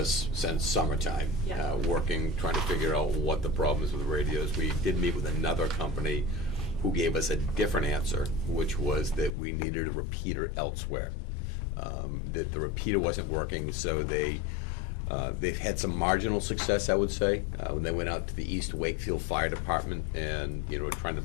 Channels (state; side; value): drops out; right; at 9.3 s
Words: since summertime, Yeah. working, trying to figure out what the problem is with the radios. We did meet with another company who gave us a different answer, which was that we needed a repeater elsewhere. That the repeater wasn't working, so they've had some marginal success, I would say, when they went out to the East Wakefield Fire Department and, you know, were trying to